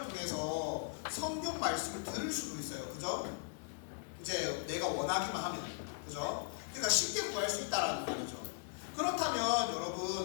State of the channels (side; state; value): right; silent; digital silence